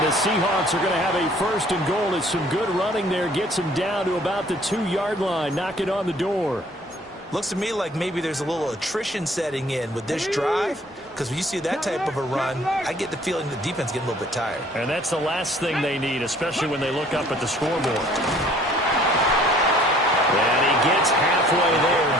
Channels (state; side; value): normal; both; correlation 0.56